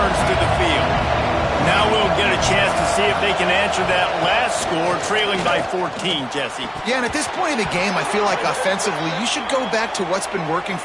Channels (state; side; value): identical; both; correlation 1.00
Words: to the field. Now Now we'll get a chance to see if they can answer that last score, trailing by 14, Jesse. Yeah, and at this point in the game, I feel like offensively, you should go back to what's been working